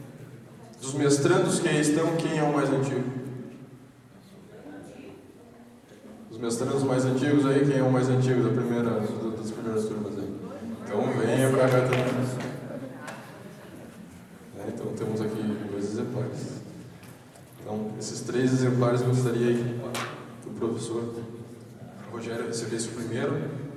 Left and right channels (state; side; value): identical; both; correlation 1.00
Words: Dos mestrandos que aí estão, quem é o mais antigo? Os mestrandos mais antigos aí, quem é o mais antigo das primeiras turmas aí? Então venha para cá também. Então temos aqui 2 exemplares. Então, esses 3 exemplares eu gostaria aí que o professor Rogério recebesse o primeiro